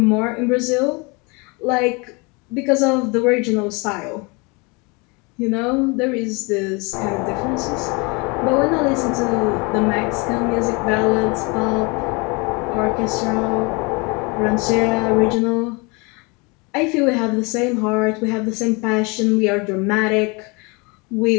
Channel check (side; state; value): right; quieter; 28.7 dB